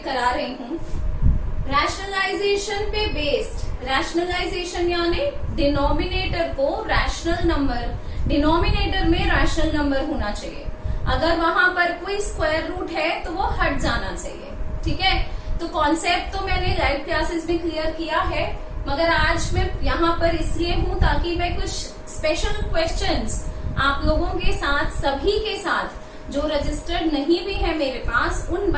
करा रही हूँ। रैशनलाइजेशन पे बेस्ड, रैशनलाइजेशन यानी डिनोमिनेटर को रैशनल नंबर, डिनोमिनेटर में रैशनल नंबर होना चाहिए। अगर वहां पर कोई स्क्वायर रूट है तो वो हट जाना चाहिए। ठीक है, तो कॉन्सेप्ट तो मैंने लाइव क्लासेस में क्लियर किया है, मगर आज मैं यहाँ पर इसलिए हूँ ताकि मैं कुछ स्पेशल क्वेश्चंस आप लोगों के साथ, सभी के साथ जो रजिस्टर्ड नहीं भी है मेरे पास, उन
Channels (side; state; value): both; identical; correlation 1.00